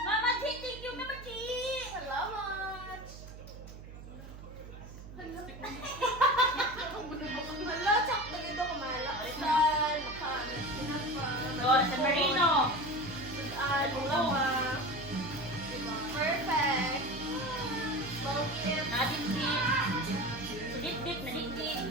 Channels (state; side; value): noise; right; hum, 14 dB below the sound